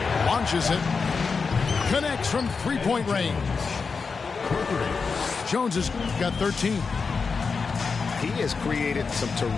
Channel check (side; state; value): right; quieter; 5.0 dB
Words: Launches it. Connects from three-point range. Jones has got 13. He has created some